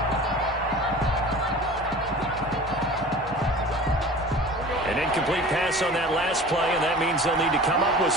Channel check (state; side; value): normal; both; correlation 0.40